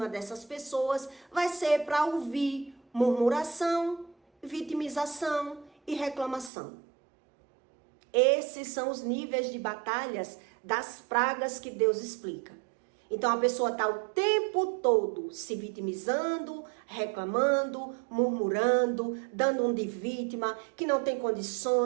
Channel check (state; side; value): drops out; left; at 6.5 s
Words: dessas pessoas vai ser para ouvir murmuração, vitimização e reclamação. Esses são os níveis de batalhas das pragas que Deus explica. Então a pessoa está o tempo todo se vitimizando, reclamando, murmurando, dando um de vítima, que não tem